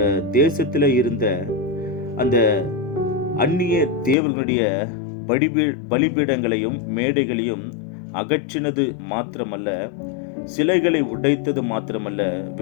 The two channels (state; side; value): drops out; right; at 4.2 s